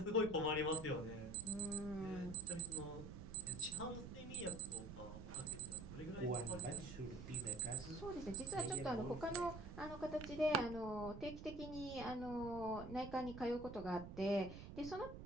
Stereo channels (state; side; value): noise; right; rumble, 11 dB below the sound